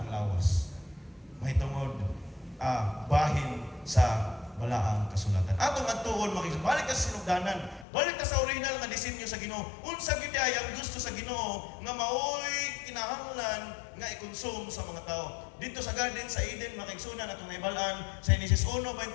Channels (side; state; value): right; drops out; at 7.9 s